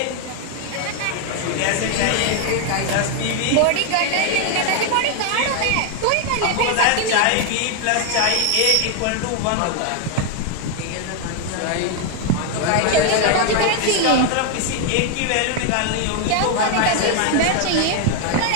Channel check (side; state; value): both; different; correlation 0.00